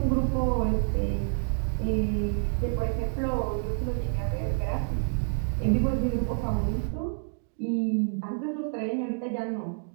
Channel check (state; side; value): silent; left; digital silence